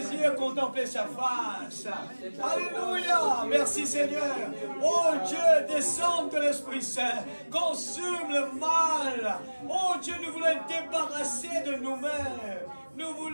contempler sa face. Alléluia. Merci Seigneur. Oh Dieu, descends de l'Esprit Saint. Consume le mal. Oh Dieu, nous voulons être débarrassés de nous-mêmes. Nous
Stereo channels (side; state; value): both; inverted; correlation -1.00